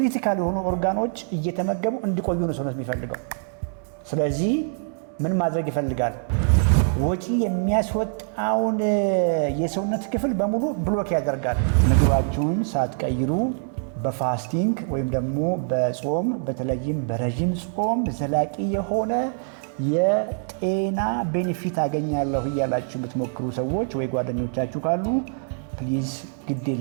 የሆኑ ኦርጋኖች እየተመገቡ እንዲቆዩ ነው ሰውነት የሚፈልገው። ስለዚህ ምን ማድረግ ይፈልጋል? ወጪ የሚያስወጣውን የሰውነት ክፍል በሙሉ ብሎክ ያደርጋል። ምግባችሁን ሳትቀይሩ በፋስቲንግ ወይም ደግሞ በጾም በተለይም በረዥም ጾም ዘላቂ የሆነ የጤና ቤኔፊት አገኛለሁ እያላችሁ የምትሞክሩ ሰዎች ወይ ጓደኞቻችሁ ካሉ ፕሊዝ ግድ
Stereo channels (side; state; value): left; silent; digital silence